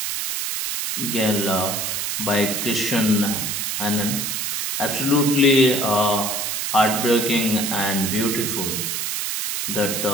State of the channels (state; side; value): noise; right; hiss, 2 dB below the sound